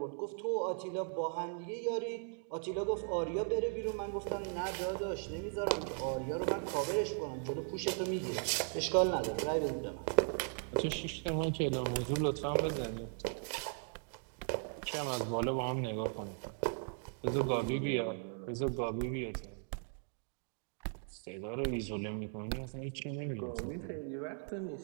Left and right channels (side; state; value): left; silent; 53 dB below the other